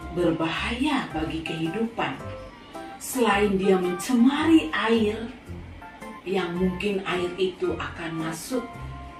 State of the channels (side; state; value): both; identical; correlation 1.00